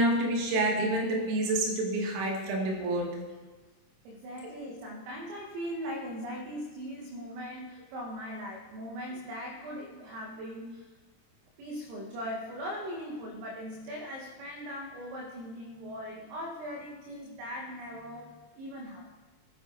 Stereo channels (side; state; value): left; late; 27 ms